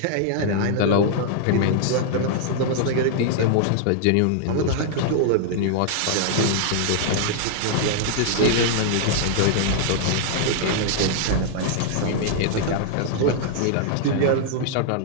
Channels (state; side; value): different; both; correlation -0.01